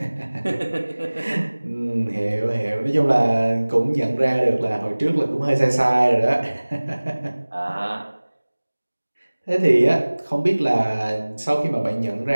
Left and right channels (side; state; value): both; inverted; correlation -1.00